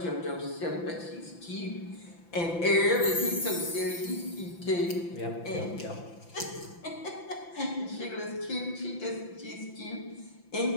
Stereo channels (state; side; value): late; right; 5.9 ms